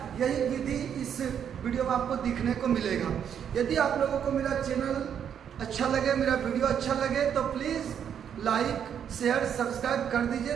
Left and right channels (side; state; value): left; quieter; 8.5 dB